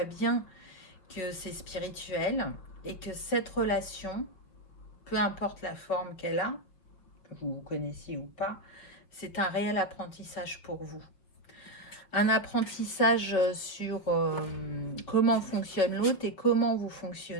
bien que c'est spirituel et que cette relation, peu importe la forme qu'elle a, que vous connaissiez ou pas, c'est un réel apprentissage pour vous. Un apprentissage sur comment fonctionne l'autre et comment vous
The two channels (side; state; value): right; late; 5.8 ms